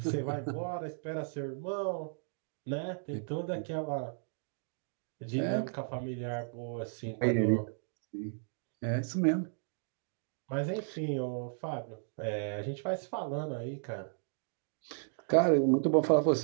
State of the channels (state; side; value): silent; left; digital silence